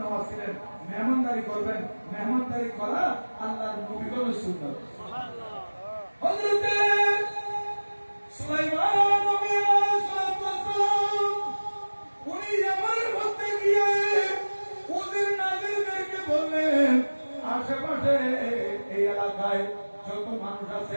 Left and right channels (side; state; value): both; inverted; correlation -1.00